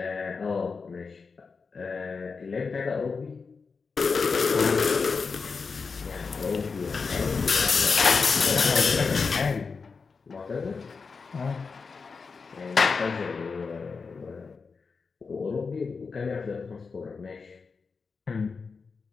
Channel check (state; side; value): quieter; right; 4.9 dB